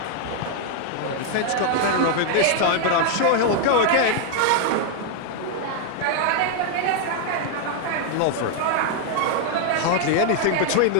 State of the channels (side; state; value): both; different; correlation 0.00